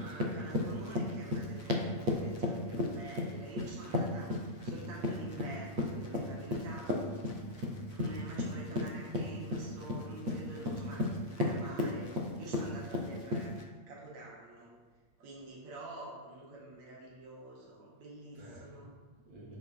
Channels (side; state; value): left; late; 8.6 ms